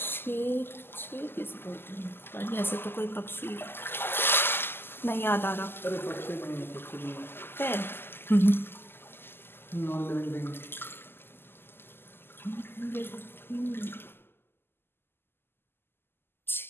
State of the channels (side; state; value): right; late; 0.11 ms